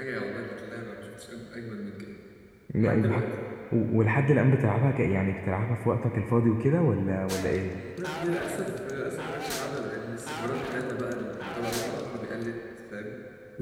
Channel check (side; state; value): both; identical; correlation 1.00